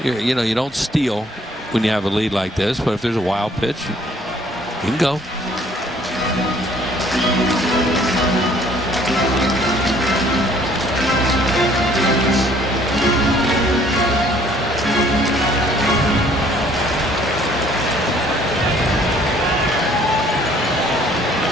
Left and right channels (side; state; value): both; normal; correlation 0.58